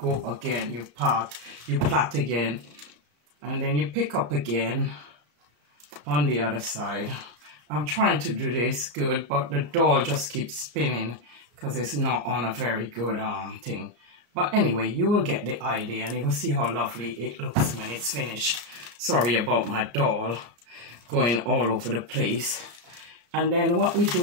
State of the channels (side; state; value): left; late; 33 ms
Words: again, you plait again, and then you pick up again on the other side. I'm trying to do this good, but the doll just keeps spinning because it's not on a very good thing. But anyway, you will get the idea and you will see how lovely it looks when it's finished. Sorry about my doll going all over the place. And then what we